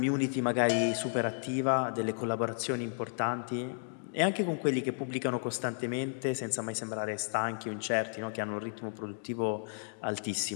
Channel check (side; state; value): right; silent; digital silence